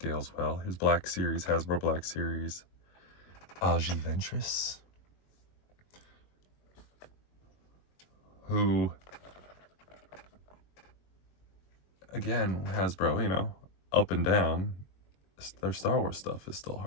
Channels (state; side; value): late; right; 21 ms